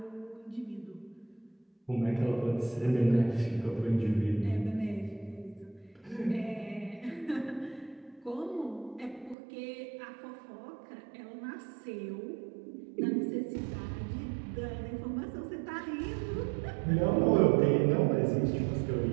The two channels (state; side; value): drops out; left; at 9.3 s